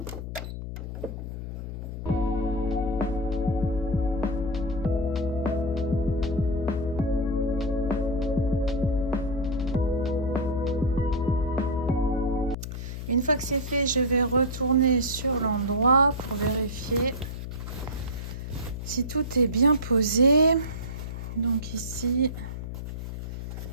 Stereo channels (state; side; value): noise; left; hum, 7 dB below the sound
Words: Une fois que c'est fait, je vais retourner sur l'endroit pour vérifier si tout est bien posé. Donc ici...